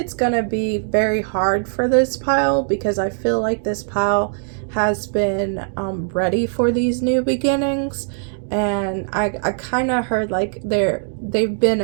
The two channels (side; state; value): left; silent; digital silence